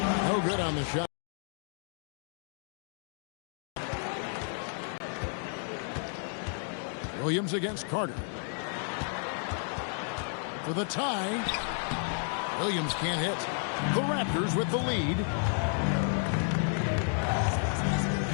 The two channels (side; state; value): right; silent; 57 dB below the other